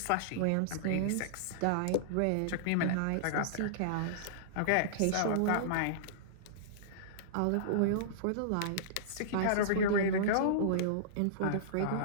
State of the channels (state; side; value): different; both; correlation -0.03